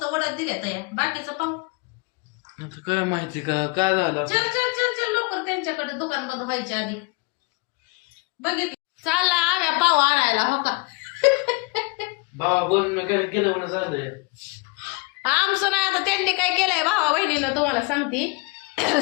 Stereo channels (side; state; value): right; quieter; 28.1 dB